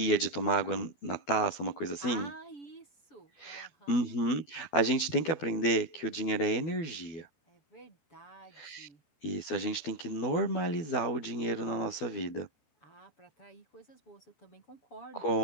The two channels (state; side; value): late; right; 12 ms